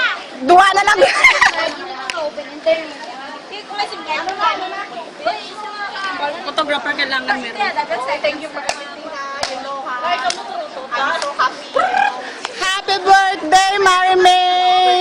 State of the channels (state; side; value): identical; both; correlation 1.00